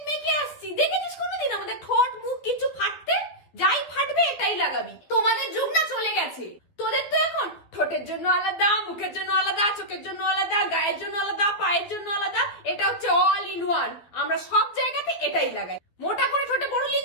মেখে আসছি, দেখেছিস কোনোদিন আমাদের ঠোঁট মুখ কিছু ফাটতে? যাই ফাটবে এটাই লাগাবি। তোমাদের যুগ না চলে গেছে। তোদের তো এখন ঠোঁটের জন্য আলাদা, মুখের জন্য আলাদা, চোখের জন্য আলাদা, গায়ের জন্য আলাদা, পায়ের জন্য আলাদা। এটা হচ্ছে অল ইন ওয়ান। আমরা সব জায়গাতে এটাই লাগাই। মোটা করে ঠোঁটে বোরোলিন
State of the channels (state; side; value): late; right; 12 ms